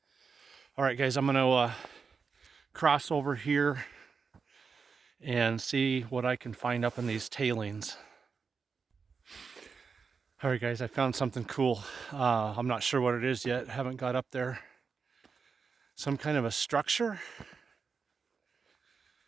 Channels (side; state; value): left; quieter; 5.4 dB